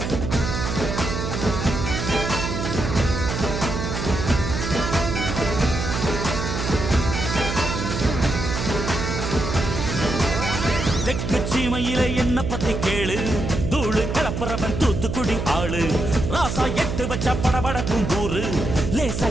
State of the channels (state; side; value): noise; right; hum, 3 dB below the sound